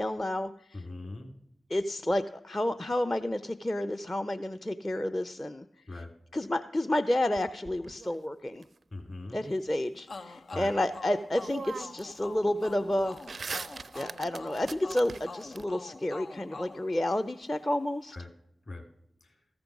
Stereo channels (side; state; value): both; normal; correlation 0.96